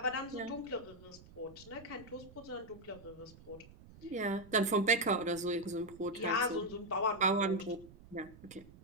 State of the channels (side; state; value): right; noise; rumble, 20 dB below the sound